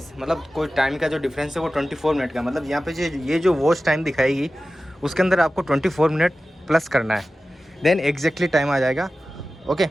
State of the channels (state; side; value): normal; both; correlation 0.95